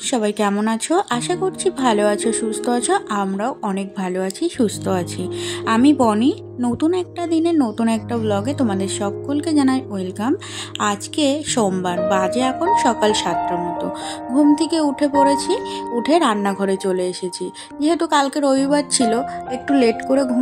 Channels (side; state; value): both; identical; correlation 1.00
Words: সবাই কেমন আছো? আশা করছি ভালো আছো, সুস্থ আছো। আমরাও অনেক ভালো আছি, সুস্থ আছি। আমি বনি, নতুন একটা দিনে নতুন একটা ব্লগে তোমাদের সকলকে জানাই ওয়েলকাম। আজকে সোমবার, বাজে এখন সকাল 7টার মতো। ঘুম থেকে উঠে পড়েছি, উঠে রান্নাঘরে চলে এসেছি। যেহেতু কালকে রবিবার ছিল, একটু লেট করে